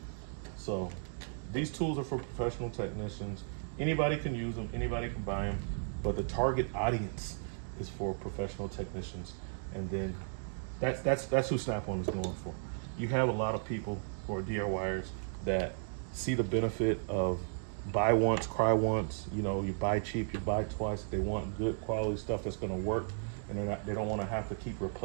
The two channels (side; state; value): left; silent; digital silence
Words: So these tools are for professional technicians. Anybody can use them, anybody can buy them, but the target audience is for professional technicians. And then that's who Snap-on is going for. You have a lot of people who are DIYers that see the benefit of buy once, cry once. You know, you buy cheap, you buy twice. They want good quality stuff that's going to work, and they don't want to have to keep